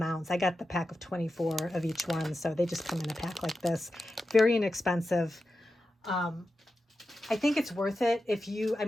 I got the pack of 24 of each one, so they just come in a pack like this. Very inexpensive. I think it's worth it if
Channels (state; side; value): normal; both; correlation 0.91